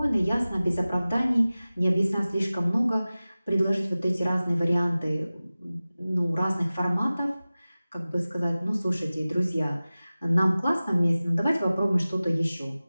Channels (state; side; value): inverted; both; correlation -0.97